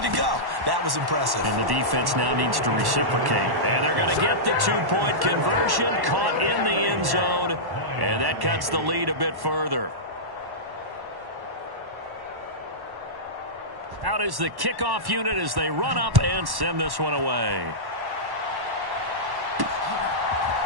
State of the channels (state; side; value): late; left; 1.1 ms